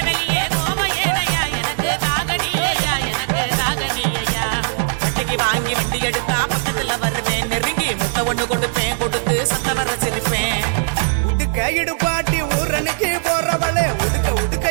வெளியே கோம ஏனையா எனக்கு தாகனியா எனக்கு தாகனியா வட்டிக்கு வாங்கி வண்டி எடுத்தா பக்கத்துல வருவேன் நெருங்கி முட்டை ஒண்ணு கொடுப்பேன் கொடுத்து சத்த வர சிரிப்பேன் உடுக்க இடுபாட்டி ஊரணிக்கு போறவளே உடுக்க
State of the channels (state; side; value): silent; left; digital silence